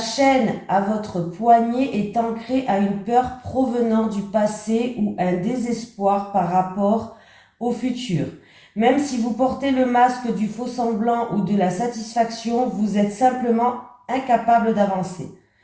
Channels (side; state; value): both; identical; correlation 1.00